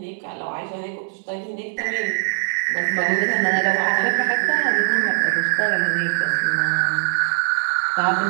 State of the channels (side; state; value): left; silent; digital silence